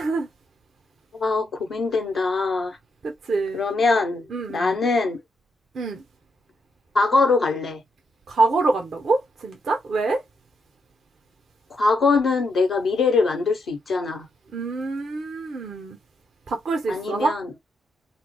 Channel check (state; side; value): normal; both; correlation 0.80